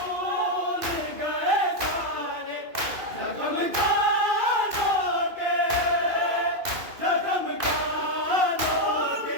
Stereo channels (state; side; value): late; left; 2.4 ms